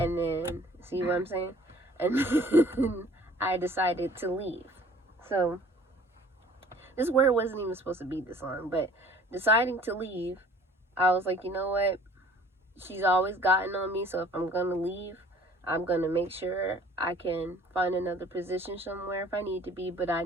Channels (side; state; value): both; normal; correlation 0.52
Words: then, see what I'm saying? And then I decided to leave. So this word wasn't even supposed to be this long, but deciding to leave, I was like, you know what? She's always gotten on me, so if I'm going to leave, I'm going to make sure I can find another position somewhere if I need to be. But I